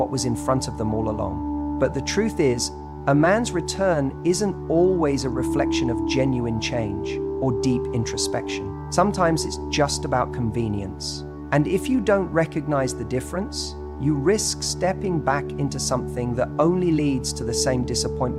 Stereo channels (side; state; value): both; identical; correlation 1.00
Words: was in front of them all along. But the truth is, a man's return isn't always a reflection of genuine change or deep introspection. Sometimes it's just about convenience. And if you don't recognize the difference, you risk stepping back into something that only leads to the same